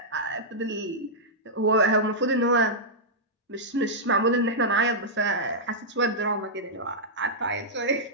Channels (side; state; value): both; normal; correlation -0.09